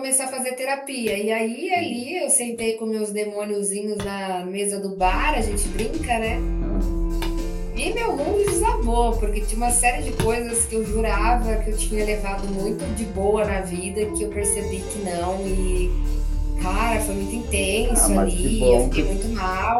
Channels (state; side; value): identical; both; correlation 1.00